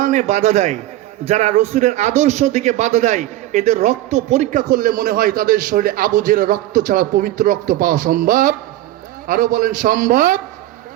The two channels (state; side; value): quieter; left; 14.9 dB